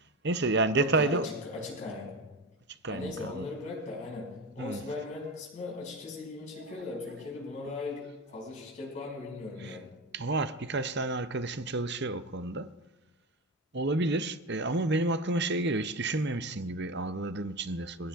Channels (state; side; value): normal; both; correlation 0.23